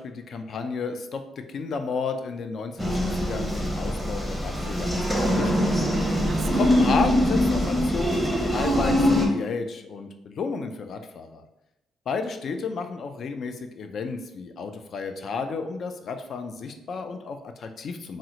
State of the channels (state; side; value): normal; both; correlation 0.82